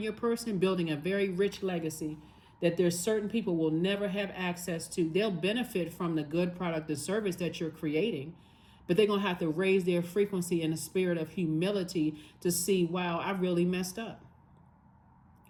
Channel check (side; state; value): both; identical; correlation 1.00